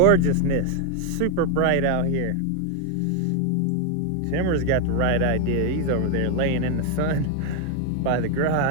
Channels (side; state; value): both; different; correlation 0.01